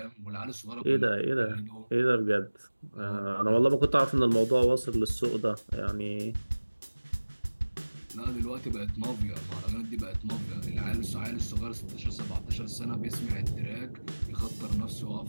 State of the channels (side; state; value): both; inverted; correlation -1.00